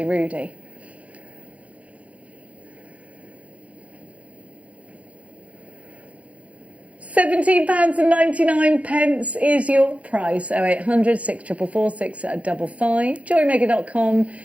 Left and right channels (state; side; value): late; left; 0.065 ms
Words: rudy. £17.99 is your price. 0800 644 655. JewelleryMaker.com.